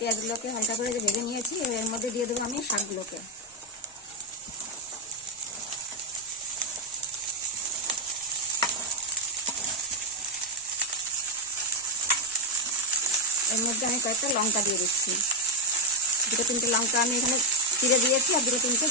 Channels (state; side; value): normal; both; correlation 0.05